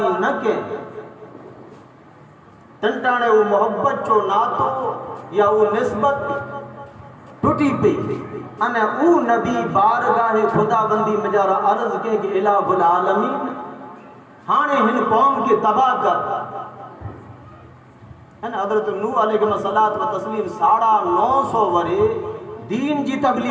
نہ کے تنٹانے وہ محبت چو ناتو یا وہ نسبت ٹوٹی پی انہیں او نبی بارگاہ خدا بندی مجارہ عرض کے کہ الہ العالمین ہانے ہن قوم کی تباہ کر حضرت نوح علیہ الصلوۃ و تسلیم 950 ورے دین جی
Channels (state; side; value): identical; both; correlation 1.00